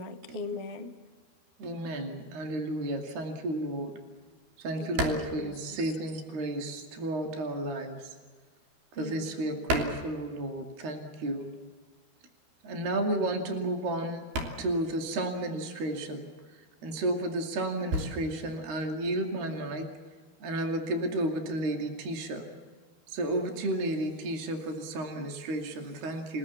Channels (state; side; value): late; left; 13 ms